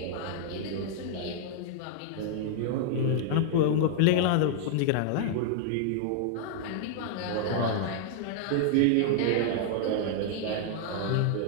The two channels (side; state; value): both; different; correlation -0.01